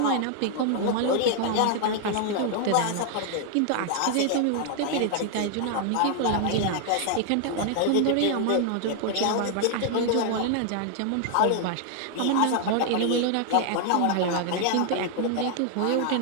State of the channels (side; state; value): both; different; correlation 0.00